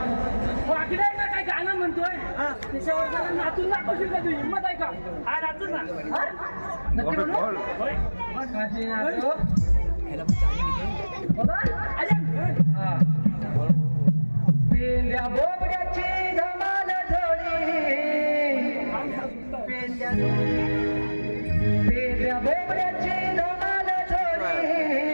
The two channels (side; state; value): both; inverted; correlation -1.00